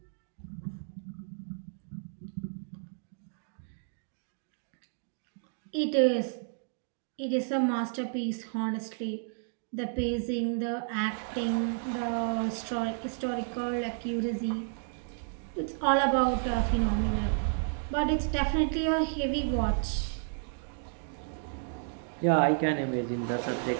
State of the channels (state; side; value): silent; left; digital silence